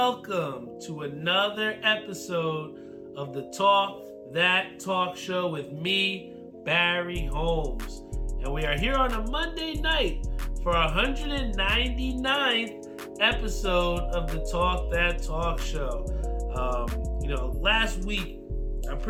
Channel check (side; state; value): both; identical; correlation 1.00